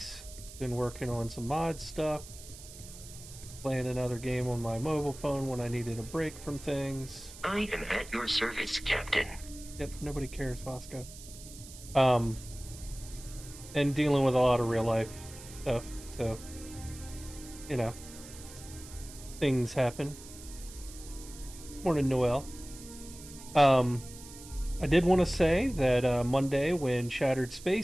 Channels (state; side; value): noise; right; hiss, 16 dB below the sound